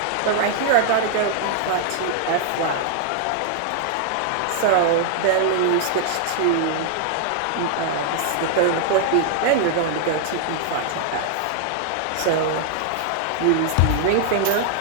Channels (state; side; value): different; both; correlation 0.00